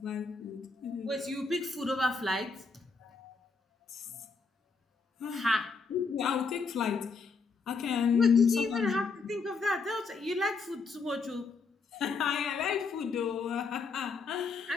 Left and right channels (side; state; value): right; quieter; 4.6 dB